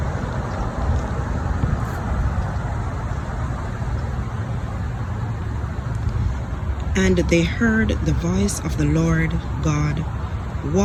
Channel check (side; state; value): both; identical; correlation 1.00